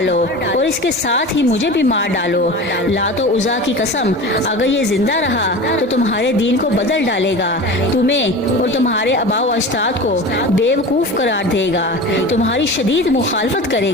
اور اس کے ساتھ ہی مجھے بھی مار ڈالو۔ لات و عزا کی قسم، اگر یہ زندہ رہا تو تمہارے دین کو بدل ڈالے گا، تمہیں اور تمہارے آباء و اجداد کو بیوقوف قرار دے گا، تمہاری شدید مخالفت کرے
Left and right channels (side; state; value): both; normal; correlation 0.33